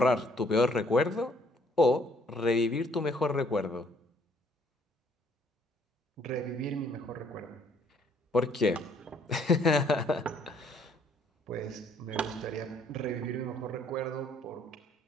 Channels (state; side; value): normal; both; correlation 0.63